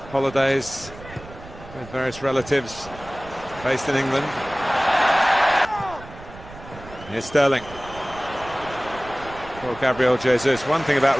holidays. with various relatives based in England. Here's Sterling for Gabriel Jesus. One thing about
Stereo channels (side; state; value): right; noise; rumble, 17 dB below the sound